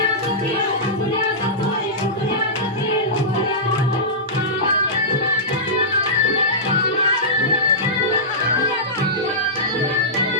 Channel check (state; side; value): normal; both; correlation -0.16